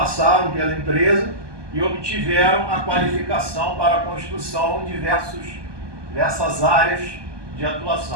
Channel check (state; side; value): late; left; 1.2 ms